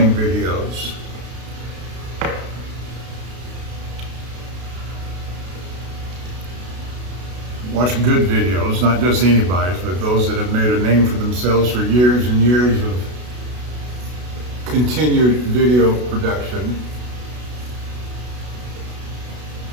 videos. Watch good videos, not just anybody's, but those that have made a name for themselves for years and years of continued video production.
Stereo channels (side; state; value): left; late; 32 ms